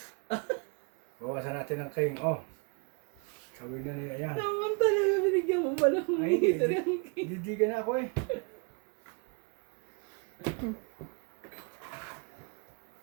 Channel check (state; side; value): quieter; left; 33.4 dB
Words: Bawasan natin ang king. Oh. Sabi na niya yan. Naman talaga binigyan mo pa ng Ay, hindi. didigan na ako eh.